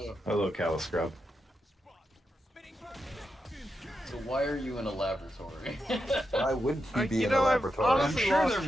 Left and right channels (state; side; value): normal; both; correlation 0.86